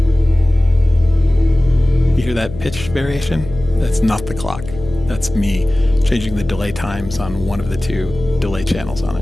You hear that pitch variation? That's not the clock. That's me changing the delay times on one of the two delay channels on it.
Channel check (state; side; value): noise; left; hum, 13 dB below the sound